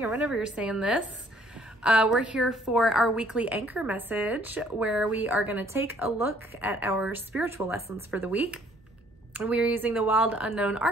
or whenever you're saying this. We're here for our weekly anchor message where we are going to take a look at our spiritual lessons for the week. And we are using the Wild Unknown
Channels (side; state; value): both; normal; correlation 0.61